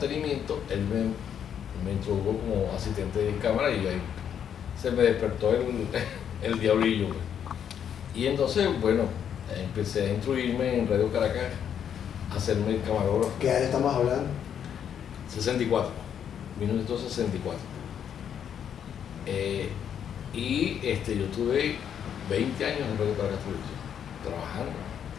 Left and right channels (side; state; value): right; quieter; 8.7 dB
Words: él me introdujo como asistente de cámara y ahí se me despertó el diablillo. Pues. Y entonces, bueno, empecé a instruirme en Radio Caracas, a hacerme camarógrafo. ¿Qué año estamos hablando? 64, 1964. Y yo tuve 20 años en Radio Caracas Televisión, trabajando.